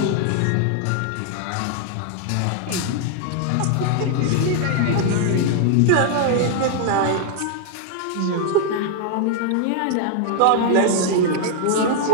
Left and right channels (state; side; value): different; both; correlation 0.00